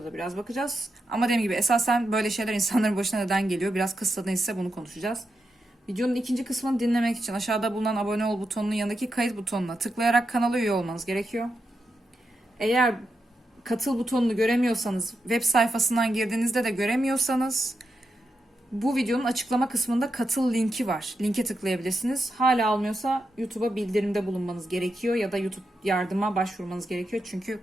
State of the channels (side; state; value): both; normal; correlation 0.86